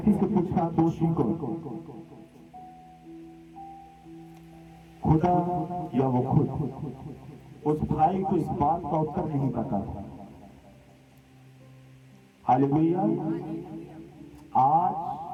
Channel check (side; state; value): both; identical; correlation 1.00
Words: से पूछा, दोषी को खुदा या वो खुद? उस भाई को इस बात का उत्तर नहीं पता। हालेलुया। आज